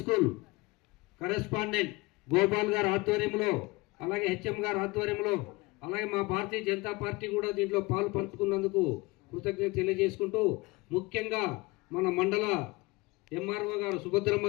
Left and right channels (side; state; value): right; quieter; 23.4 dB